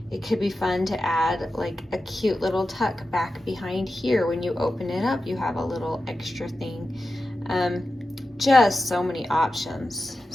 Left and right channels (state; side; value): normal; both; correlation 0.92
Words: It could be fun to add like a cute little tuck back behind here. When you open it up, you have a little extra thing. Just so many options.